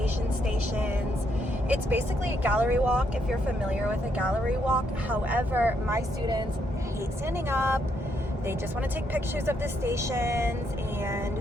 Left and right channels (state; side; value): normal; both; correlation 0.76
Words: stations. It's basically a gallery walk if you're familiar with a gallery walk. However, my students hate standing up. They just want to take pictures of the stations